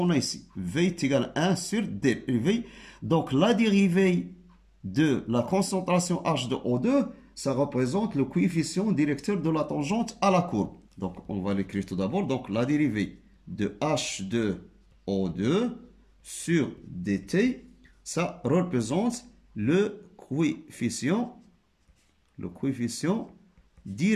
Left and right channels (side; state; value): both; identical; correlation 1.00